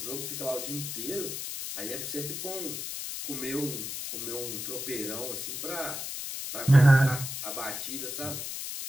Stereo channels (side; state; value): left; noise; hiss, 5 dB below the sound